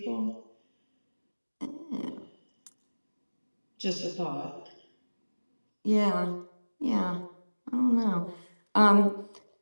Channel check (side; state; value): both; inverted; correlation -1.00